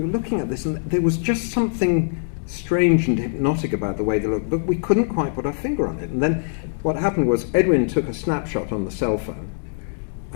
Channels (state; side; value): silent; right; digital silence